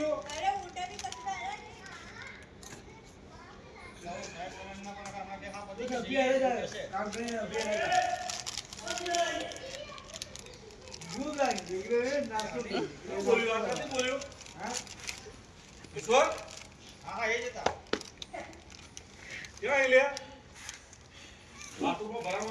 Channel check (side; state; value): both; identical; correlation 1.00